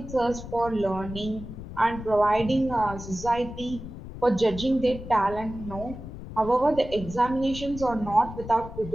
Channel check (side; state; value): left; noise; rumble, 11 dB below the sound